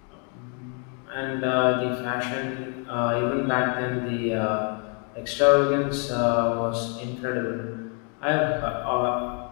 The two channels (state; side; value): quieter; right; 38.8 dB